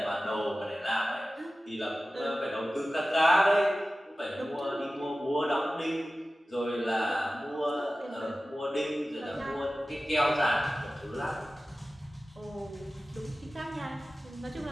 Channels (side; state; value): both; normal; correlation 0.96